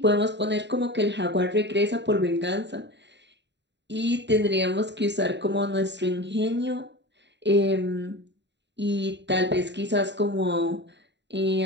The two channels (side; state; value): left; late; 0.52 ms